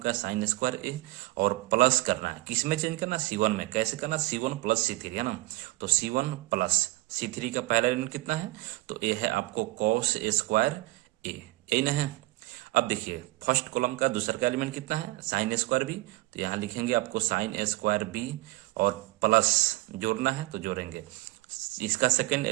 साइन स्क्वायर ए, और प्लस करना है, किस में चेंज करना, C1 में। कैसे करना, C1 प्लस C3 है ना। तो C1 प्लस C3 का पहला एलिमेंट कितना है, तो ए है आपको कॉस ए स्क्वायर ए, यही ना है। अब देखिए फर्स्ट कॉलम का दूसरा का एलिमेंट कितना है, साइन स्क्वायर बी। तो यहाँ लिखेंगे आपको साइन स्क्वायर बी और प्लस जोड़ना है तो जोड़ेंगे। इसका सेकंड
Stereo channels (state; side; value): quieter; left; 19.5 dB